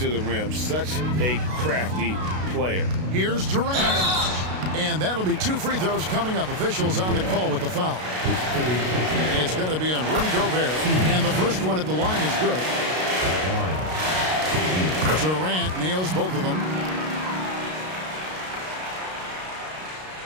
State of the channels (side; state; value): left; late; 32 ms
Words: the rim. Such a crafty player. Here's Durant. And that'll be 2 free throws coming up. Officials on the call with the foul. It's going to be on Rudy Gobert. And the first one at the line is good. Durant nails both of them.